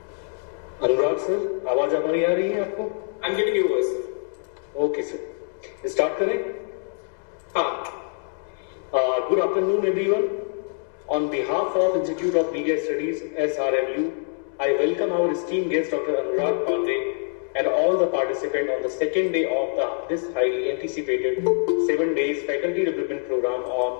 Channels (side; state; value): right; silent; 62 dB below the other